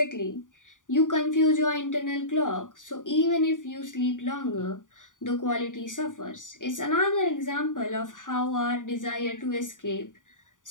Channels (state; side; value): late; right; 0.88 ms